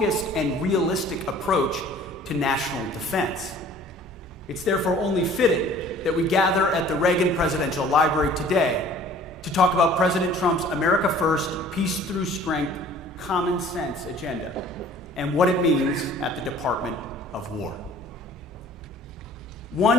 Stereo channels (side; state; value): both; normal; correlation 0.51